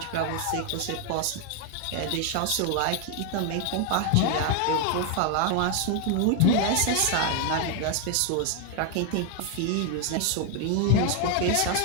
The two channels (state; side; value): different; both; correlation 0.00